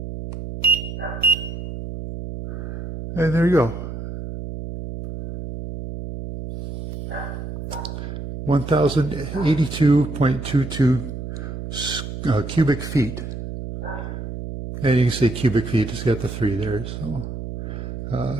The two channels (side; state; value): right; noise; hum, 7 dB below the sound